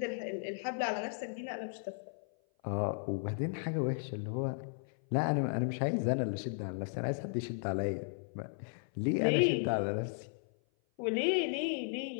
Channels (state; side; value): silent; right; 54 dB below the other